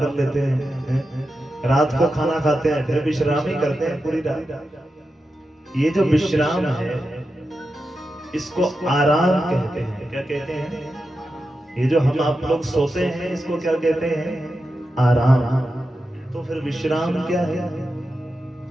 लेते हैं, रात को खाना खाते हैं फिर विश्राम ही करते हैं पूरी रात। ये जो विश्राम है इसको आराम कहते हैं। क्या कहते हैं? ये जो हम आप लोग सोते हैं इसको क्या कहते हैं? आराम। तो फिर विश्राम क्या है?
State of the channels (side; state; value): both; normal; correlation 0.90